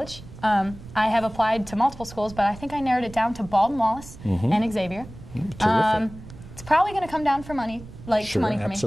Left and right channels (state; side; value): noise; right; rumble, 16 dB below the sound